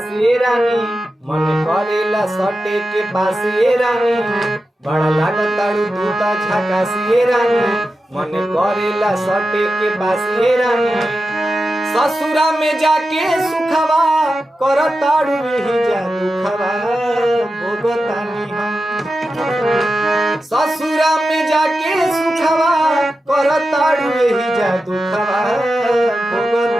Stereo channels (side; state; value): both; normal; correlation 0.91